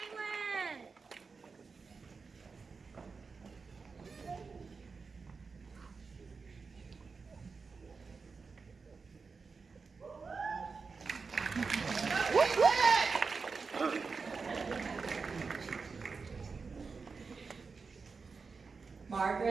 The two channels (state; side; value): quieter; left; 4.8 dB